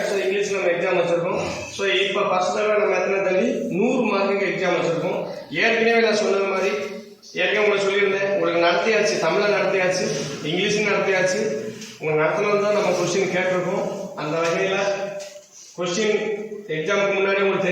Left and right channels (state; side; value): identical; both; correlation 1.00